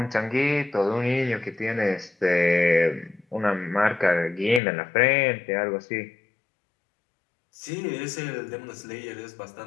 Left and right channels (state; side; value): drops out; right; at 4.6 s